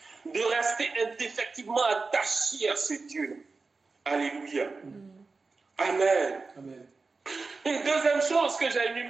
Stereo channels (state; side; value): quieter; left; 4.1 dB